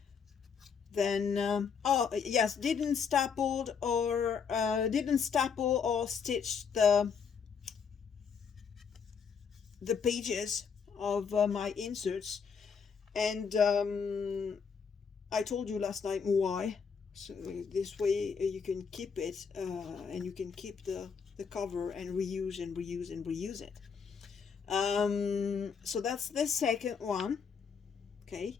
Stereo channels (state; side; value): quieter; right; 6.3 dB